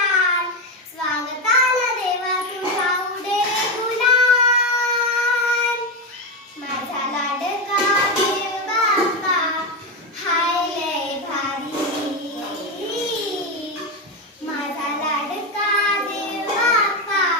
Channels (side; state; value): both; normal; correlation 0.11